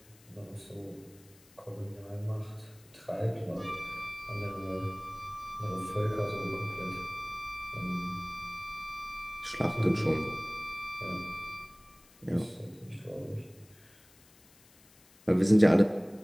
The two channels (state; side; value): noise; left; hiss, 27 dB below the sound